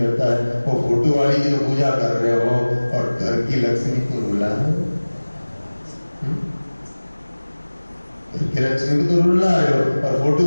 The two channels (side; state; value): both; inverted; correlation -1.00